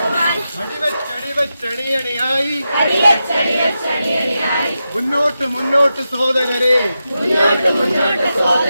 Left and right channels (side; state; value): both; inverted; correlation -0.89